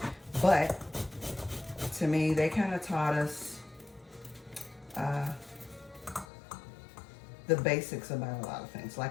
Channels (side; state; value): right; drops out; at 6.2 s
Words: But to me, they kind of taught us the basics about a lot of things.